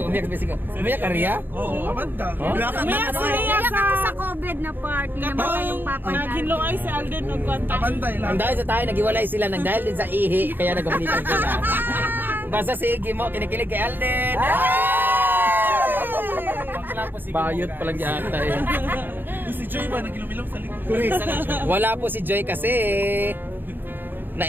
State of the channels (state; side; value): late; left; 0.093 ms